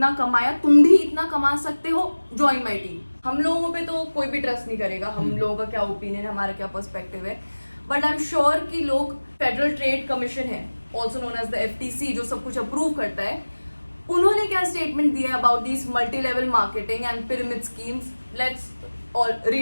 कमाया, तुम भी इतना कमा सकते हो, ज्वाइन माई टीम। हम लोगों पे तो कोई भी ट्रस्ट नहीं करेगा, हम लोगों का क्या ओपिनियन है, हमारा क्या पर्सपेक्टिव है, बट आई एम श्योर कि लोग, फेडरल ट्रेड कमीशन है, also known as the FTC, जो सब कुछ अप्रूव करता है, उन्होंने क्या स्टेटमेंट दिया about this multi level marketing and pyramid schemes? Let's all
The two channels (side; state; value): both; inverted; correlation -1.00